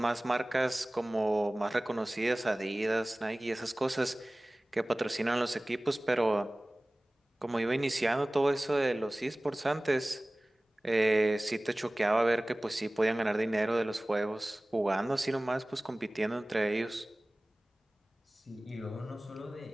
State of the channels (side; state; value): both; normal; correlation 0.98